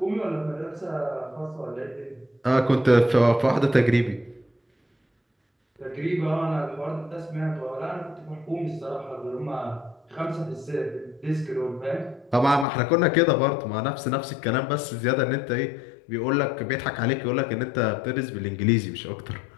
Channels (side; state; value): right; drops out; at 12.7 s